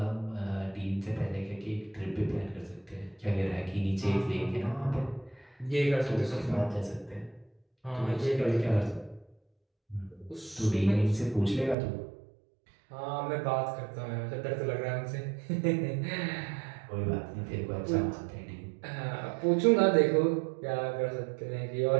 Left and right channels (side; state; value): left; drops out; at 11.8 s